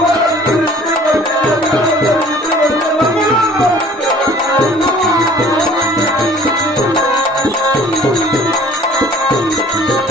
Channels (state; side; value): normal; both; correlation 0.51